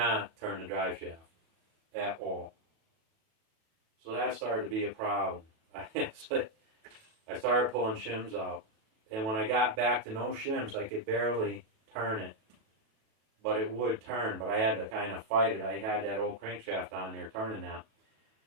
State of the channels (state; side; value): late; left; 37 ms